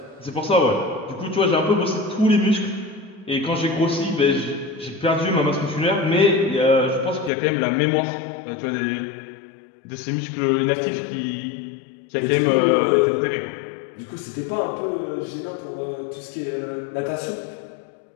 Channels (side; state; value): right; drops out; at 7.3 s